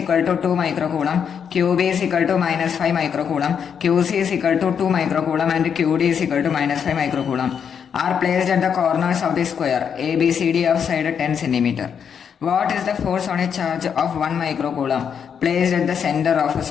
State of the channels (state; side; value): quieter; right; 7.4 dB